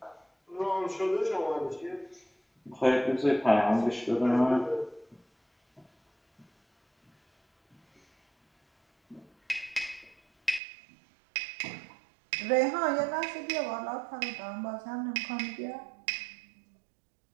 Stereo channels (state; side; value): drops out; left; at 10.6 s